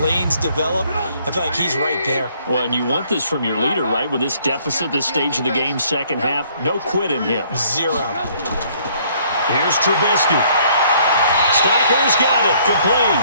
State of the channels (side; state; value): both; inverted; correlation -0.62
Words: develop. I feel like he's right there. Well, and you want this from your leader, right? With this deficit, this stage of the game, second half, no quit in him. Zero. Here's Trubisky. Stacker's got it.